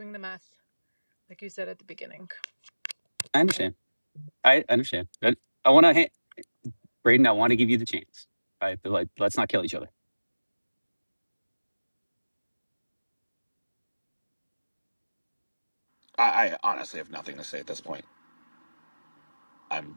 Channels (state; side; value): inverted; both; correlation -1.00